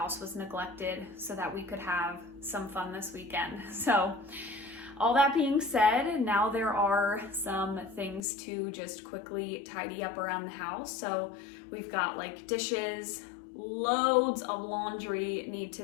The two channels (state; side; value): drops out; right; at 8.2 s